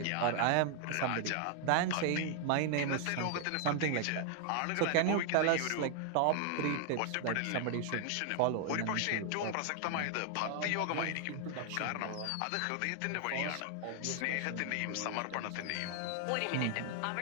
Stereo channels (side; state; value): both; different; correlation 0.00